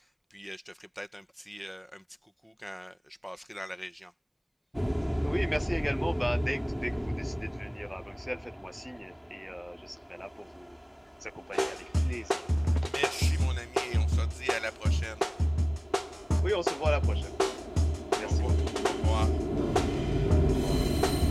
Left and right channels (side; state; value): both; identical; correlation 1.00